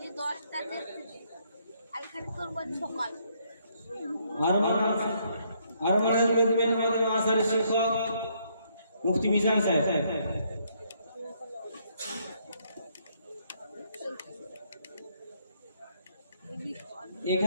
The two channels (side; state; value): both; inverted; correlation -0.71